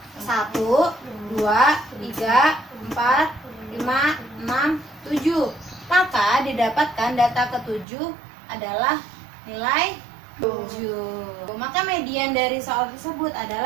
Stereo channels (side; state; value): left; drops out; at 7.9 s